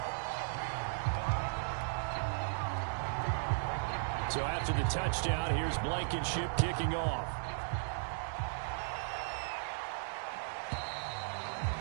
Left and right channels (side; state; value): left; silent; digital silence